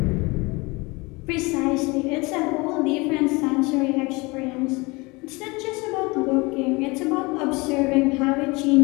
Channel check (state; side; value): quieter; right; 25.4 dB